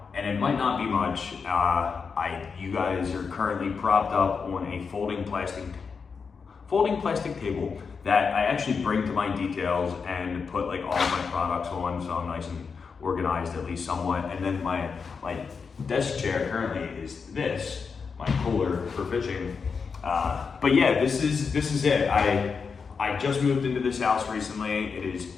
and it might not be much. You guys are currently propped up on a folding plastic table that I actually bring to my details and put like all of my products on, so I'm nice and organized at least somewhat. And then my desk chair currently is my cooler for fishing. But yeah, this is it. I just moved into this house recently. It is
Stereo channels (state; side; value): quieter; right; 5.5 dB